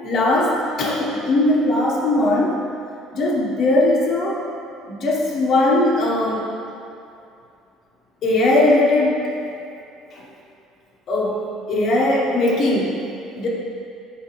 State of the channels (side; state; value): both; normal; correlation 0.56